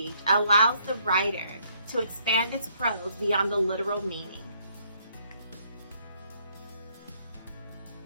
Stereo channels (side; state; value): both; inverted; correlation -0.68